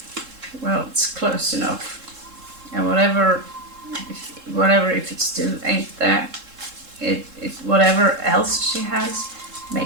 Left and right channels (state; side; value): late; left; 3.7 ms